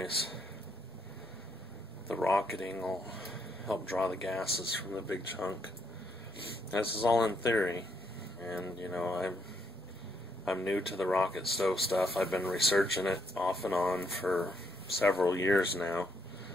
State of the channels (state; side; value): normal; both; correlation 0.75